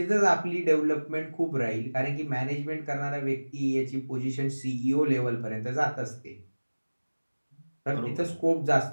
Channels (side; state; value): both; inverted; correlation -1.00